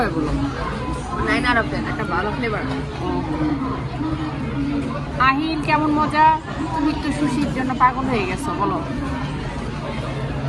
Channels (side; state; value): both; identical; correlation 1.00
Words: বলো। 9/10 একটা ভালো ফ্লেভার। আহিল কেমন মজা? তুমি তো সুশির জন্য পাগল হয়ে গেছো, বলো